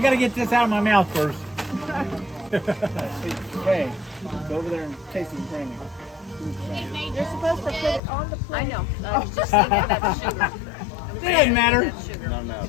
gotta get this out of my mouth first. Hey, go over there and taste it brand new. You're supposed to put it on the plate. I know. I was just thinking about sugar. It doesn't matter. Not enough.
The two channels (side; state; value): right; drops out; at 8.0 s